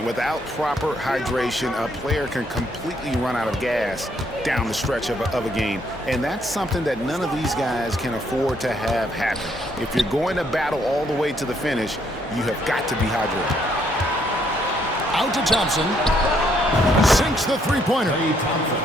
Without proper hydration, a player can completely run out of gas down the stretch of a game. And that's something that none of these guys can afford to have happen. If you're going to battle all the way to the finish, you have got to be hydrated. Out to Thompson. Sinks the three-pointer.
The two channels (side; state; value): both; normal; correlation 0.71